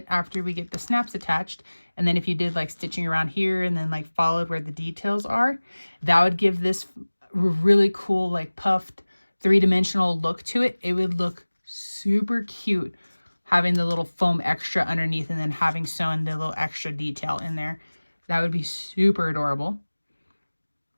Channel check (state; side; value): inverted; both; correlation -1.00